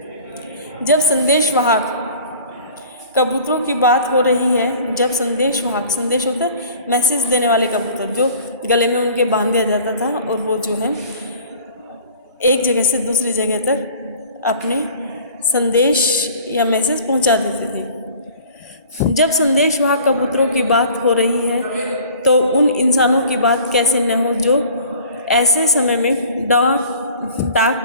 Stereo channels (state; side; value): inverted; both; correlation -0.47